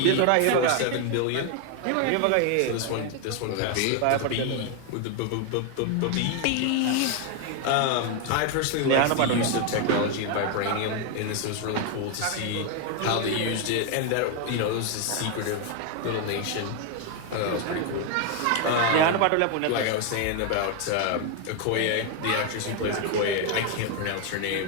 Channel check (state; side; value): different; both; correlation 0.01